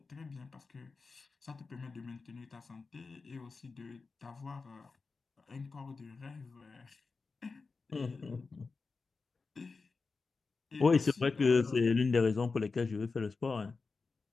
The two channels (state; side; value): quieter; right; 4.3 dB